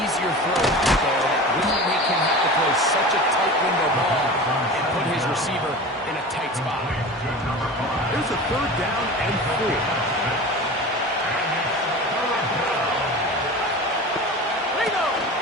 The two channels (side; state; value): both; normal; correlation 0.33